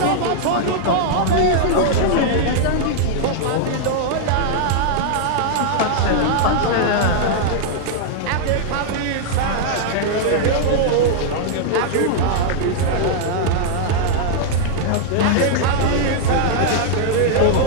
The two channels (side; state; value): both; different; correlation -0.01